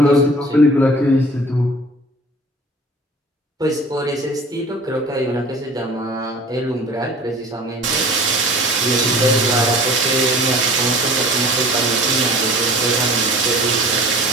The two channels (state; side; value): normal; both; correlation 0.44